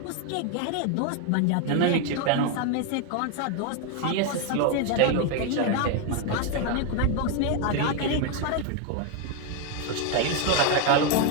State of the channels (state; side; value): different; both; correlation 0.01